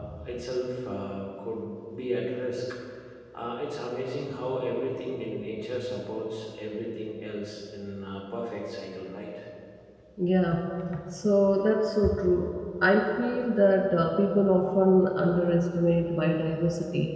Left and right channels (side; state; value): both; identical; correlation 1.00